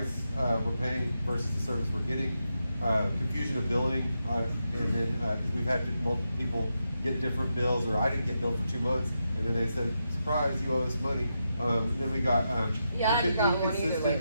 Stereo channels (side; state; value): both; inverted; correlation -0.86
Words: we're paying versus the service we're getting. Confusion of billing, and then 'cause we've had multiple people get different bills, or I didn't get billed for 2 months, and then they said, "Surprise, you owe us money." And then we got Yeah, I haven't got one either